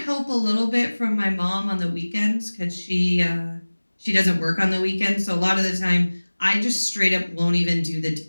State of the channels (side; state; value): both; inverted; correlation -1.00